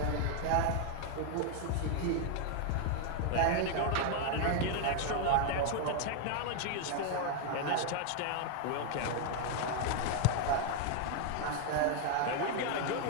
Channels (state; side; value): different; both; correlation 0.00